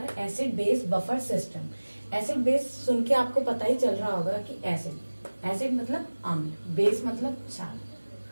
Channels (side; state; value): both; inverted; correlation -1.00